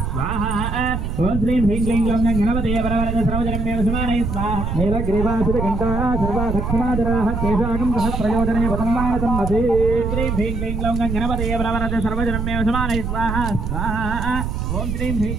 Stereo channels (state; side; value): noise; right; rumble, 2 dB below the sound